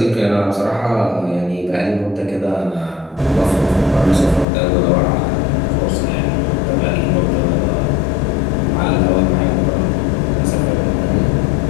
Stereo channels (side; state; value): right; drops out; at 4.5 s